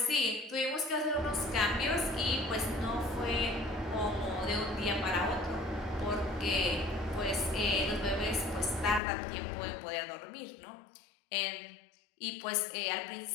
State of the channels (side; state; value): right; drops out; at 9.0 s